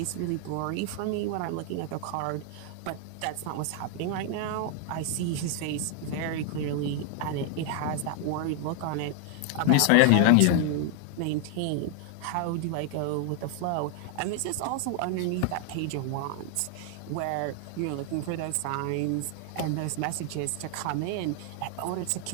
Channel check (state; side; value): different; both; correlation 0.00